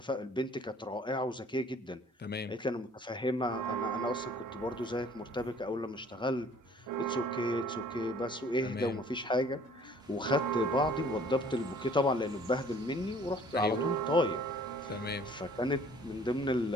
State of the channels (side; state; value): both; normal; correlation 0.54